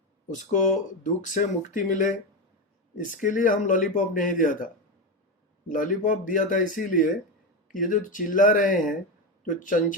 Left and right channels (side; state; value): both; normal; correlation 0.14